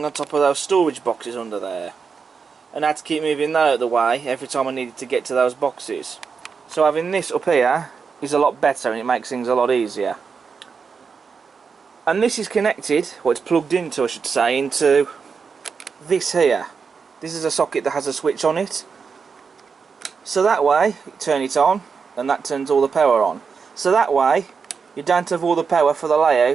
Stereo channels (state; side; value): quieter; left; 5.6 dB